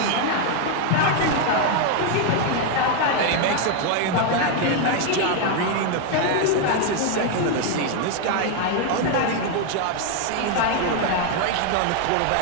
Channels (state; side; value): different; both; correlation 0.01